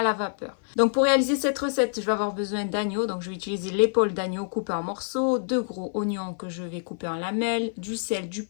la vapeur. Donc pour réaliser cette recette, je vais avoir besoin d'agneau. Donc je vais utiliser l'épaule d'agneau coupée en morceaux, 2 gros oignons que je vais couper en lamelles, du sel, du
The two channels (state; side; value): silent; right; 56 dB below the other